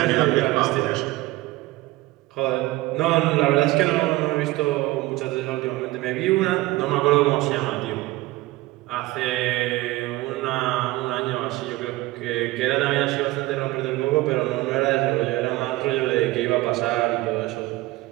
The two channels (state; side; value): quieter; left; 18.9 dB